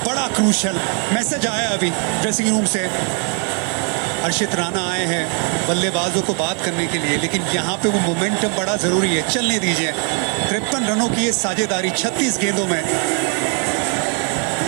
बड़ा क्रूशल मैसेज आया अभी ड्रेसिंग रूम से। हर्षित राणा आए हैं बल्लेबाजों को बात करने के लिए, लेकिन यहाँ पे वो मोमेंटम बड़ा जरूरी है, चलने दीजिए। 53 रनों की ये साझेदारी 36 गेंदों में।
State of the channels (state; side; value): quieter; left; 37.8 dB